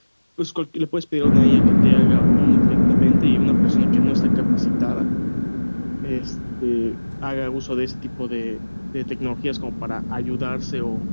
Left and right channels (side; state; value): both; inverted; correlation -1.00